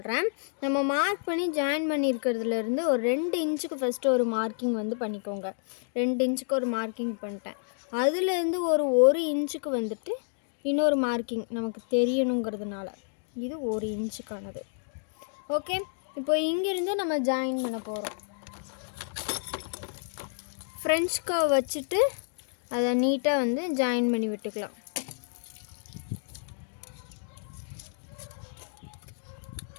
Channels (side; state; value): right; silent; digital silence